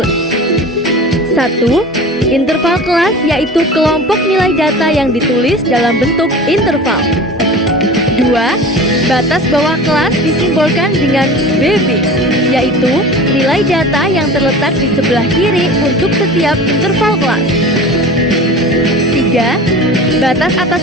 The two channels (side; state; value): both; normal; correlation 0.37